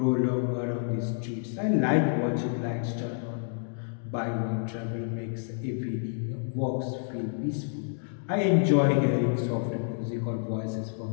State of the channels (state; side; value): silent; right; digital silence